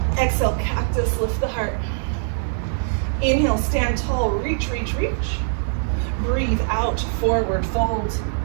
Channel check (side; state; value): left; silent; digital silence